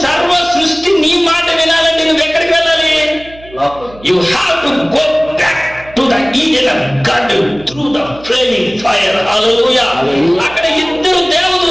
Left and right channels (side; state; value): right; noise; hum, 21 dB below the sound